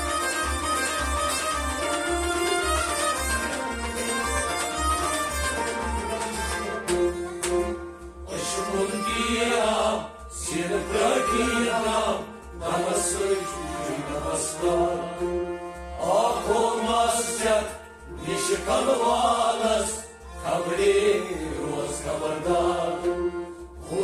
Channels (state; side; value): identical; both; correlation 1.00